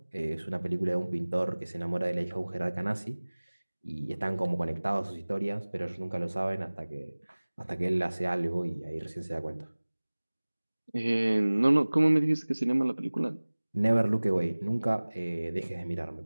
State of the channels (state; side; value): inverted; both; correlation -1.00